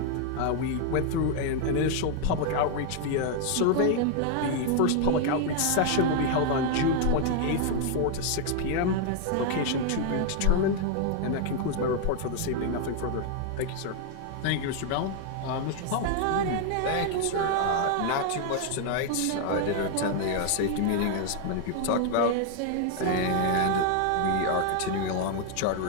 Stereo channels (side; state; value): both; different; correlation 0.00